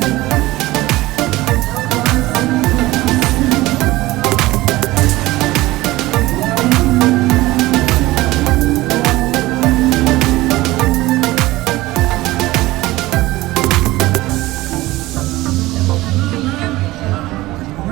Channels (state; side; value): quieter; left; 18.6 dB